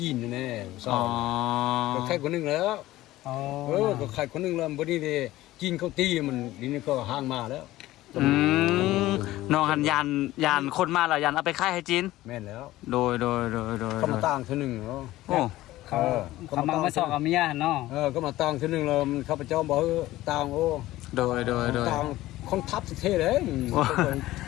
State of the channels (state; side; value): quieter; right; 16.4 dB